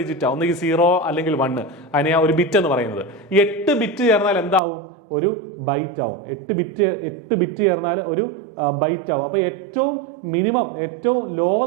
ഡിജിറ്റ് ആണ്. ഒന്നുകിൽ 0 അല്ലെങ്കിൽ 1. അതിനെയാണ് ഒരു ബിറ്റ് എന്ന് പറയുന്നത്. 8 ബിറ്റ് ചേർന്നാൽ എന്താവും? ഒരു ബൈറ്റ് ആവും. 8 ബിറ്റ് ചേർന്നാൽ ഒരു ബൈറ്റ് ആവും. അപ്പൊ ഏറ്റവും മിനിമം, ഏറ്റവും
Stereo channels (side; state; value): left; drops out; at 4.6 s